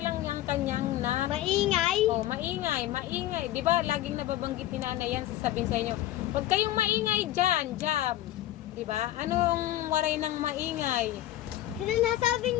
yung kanyang na Maingay. oh, maingay, maingay. 'Di ba? Laging nababanggit ni Nanay yan, sasabihin sa inyo. Huwag kayong maingay diyan, jam. 'Di ba? Anong waray ng maingay? Sino nasabi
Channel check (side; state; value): right; quieter; 14.2 dB